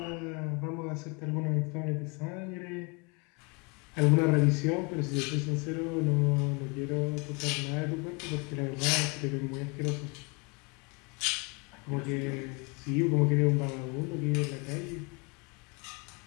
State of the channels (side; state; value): right; quieter; 30.8 dB